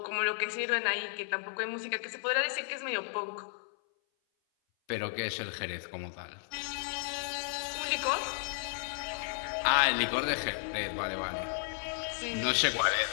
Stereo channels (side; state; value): right; silent; 55 dB below the other